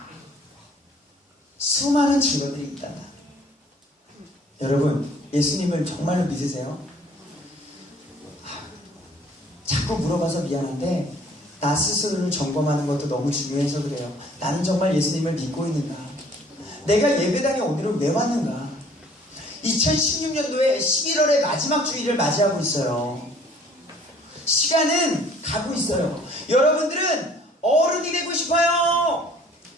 수많은 증거들이 있단다. 여러분, 예수님을 정말로 믿으세요? 자꾸 물어봐서 미안한데 나 스스로를 점검하는 것도 너무 중요해서 그래요. 나는 정말 예수님을 믿고 있는가? 내가 예배당에 오늘은 왜 왔는가? 2016년도에 11월의 마지막 주일을 맞이하고 있어요. 시간은 가고 있어요. 여러분들은 어른이 되고 싶어요.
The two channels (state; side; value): normal; both; correlation 0.55